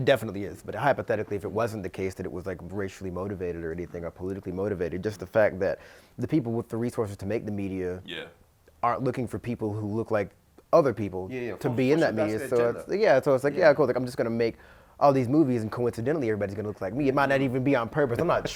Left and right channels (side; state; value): both; identical; correlation 1.00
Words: definitely is, but hypothetically, if it wasn't the case that it was like racially motivated or anything or politically motivated, just the fact that the people with the resources to make the media aren't looking for people who look like other people to be in that media. So it's like cool. Like I'm just gonna make all these movies and coincidentally everybody's gonna look like me. It might not even be on purpose. I'm not